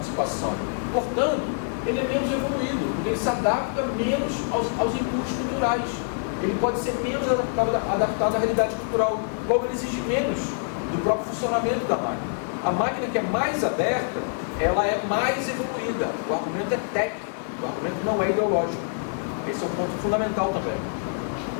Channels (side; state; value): right; silent; digital silence